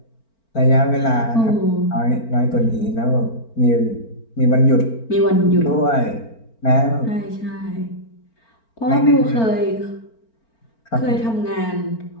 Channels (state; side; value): late; right; 4.4 ms